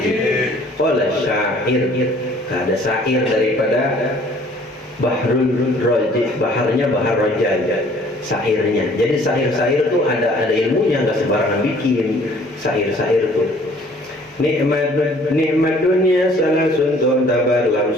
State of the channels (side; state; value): both; normal; correlation 0.56